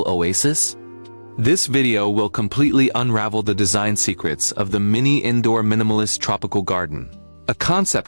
oasis? This video will completely unravel the design secrets of the mini indoor minimalist tropical garden. A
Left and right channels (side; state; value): both; inverted; correlation -1.00